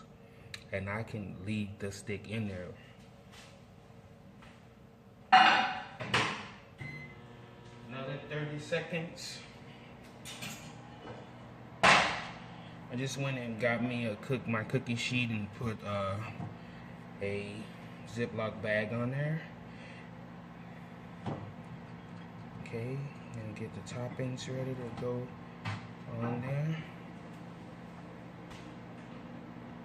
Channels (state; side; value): identical; both; correlation 1.00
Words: and I can leave the stick in there. Another 30 seconds. I just went and got me my cookie sheet and put a Ziploc bag on there. Okay, and get the toppings ready to go on there.